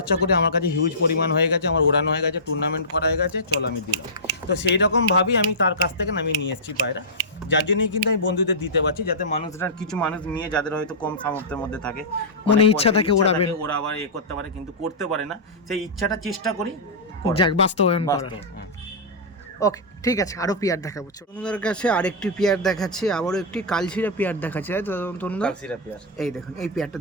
করে আমার কাছে হিউজ পরিমাণ হয়ে গেছে, আমার ওড়ানো হয়ে গেছে, টুর্নামেন্ট করা হয়ে গেছে, চল আমি দিলাম। তো সেই রকম ভাবেই আমি তার কাছ থেকে আমি নিয়ে এসেছি পায়রা, যার জন্যই কিন্তু আমি বন্ধুদের দিতে পারছি, যাতে মানুষরা, কিছু মানুষ নিয়ে যাদের হয়তো কম সামর্থ্যের মধ্যে থাকে, মনে ইচ্ছা থাকে ওড়াবেন, ওরা আবার করতে পারে, কিন্তু করতে পারে না, সেই ইচ্ছাটা চেষ্টা করি যাক বাস্তবায়ন করার। ওকে ঠিক আছে, আরো পিয়ার দেখাবো। তনুদার কাছে আরেকটি পিয়ার দেখাচ্ছি, আবারও একটি কালশিরা পিয়ার দেখাচ্ছি, তাই তো তনুদা? কালশিরা পিয়ার, এই দেখুন এই পিয়ারটা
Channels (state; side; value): normal; both; correlation -0.15